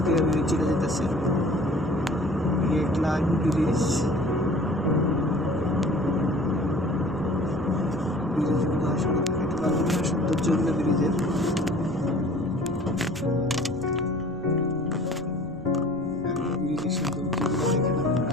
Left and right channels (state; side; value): noise; right; rumble, 19 dB below the sound